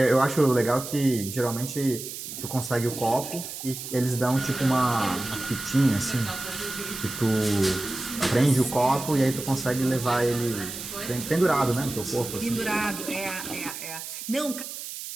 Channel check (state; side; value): noise; right; hiss, 9 dB below the sound